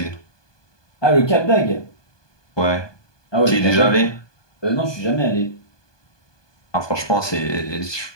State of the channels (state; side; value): late; right; 1.2 ms